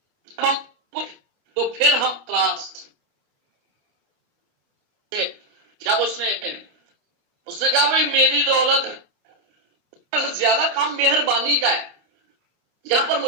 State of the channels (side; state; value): left; late; 29 ms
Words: تو پھر ہم تراس, جب اس نے کہا بھئی میری دولت زیادہ کام مہربانی کا ہے, یہاں پر